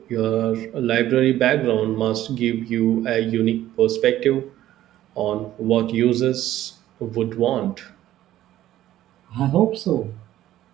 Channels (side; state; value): left; quieter; 13.5 dB